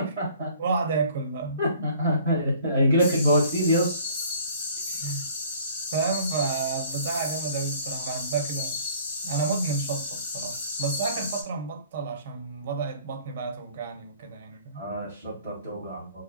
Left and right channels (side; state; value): both; inverted; correlation -0.53